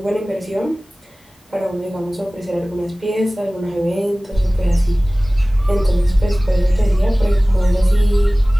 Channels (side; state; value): both; normal; correlation 0.98